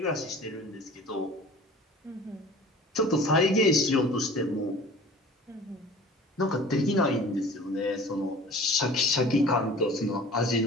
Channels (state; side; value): normal; both; correlation 0.44